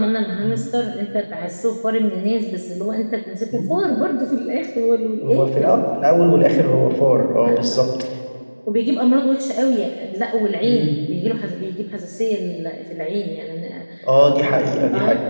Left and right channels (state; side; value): inverted; both; correlation -1.00